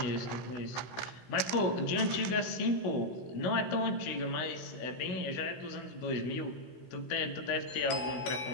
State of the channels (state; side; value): late; right; 16 ms